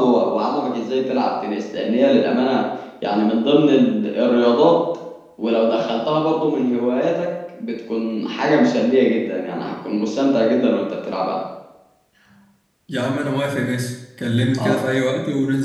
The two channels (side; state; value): both; identical; correlation 1.00